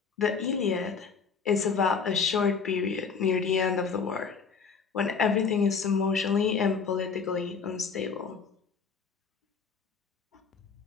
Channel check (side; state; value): right; quieter; 5.7 dB